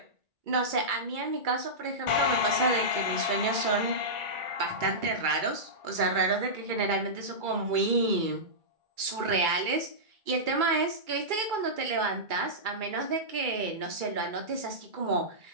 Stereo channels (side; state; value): left; late; 2.3 ms